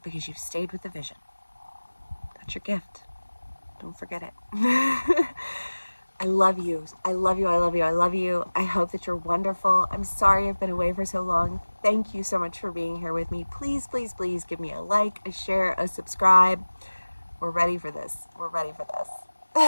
Because you've stayed with the vision. That's your gift. Don't forget it. I love you. I love you. I love you. I love you. I hope that you're wonderful. I'm sorry I've been away for so long. Thank you so much for being here with me. Please, please, please give me a like, a share, a subscribe. We're ready for this. We're ready for this.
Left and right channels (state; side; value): inverted; both; correlation -1.00